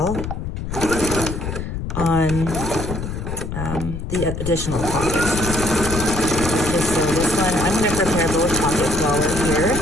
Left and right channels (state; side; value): noise; left; rumble, 5 dB below the sound